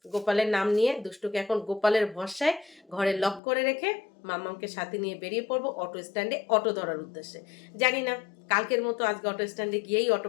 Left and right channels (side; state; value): right; drops out; at 3.4 s